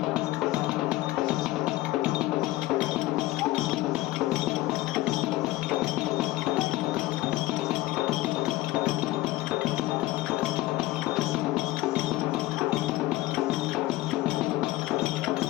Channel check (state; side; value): quieter; right; 17.7 dB